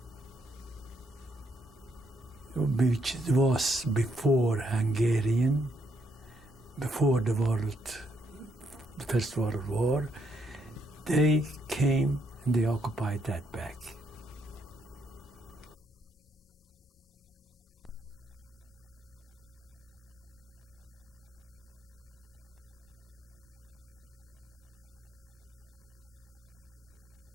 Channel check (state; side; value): normal; both; correlation 0.74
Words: which was before Hungarian, before the First World War, they came and they occupied that back.